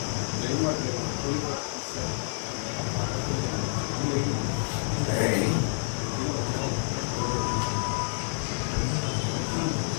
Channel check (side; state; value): right; silent; digital silence